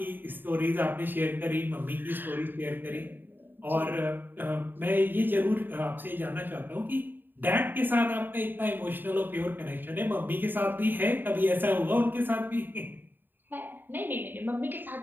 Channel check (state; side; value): late; left; 0.093 ms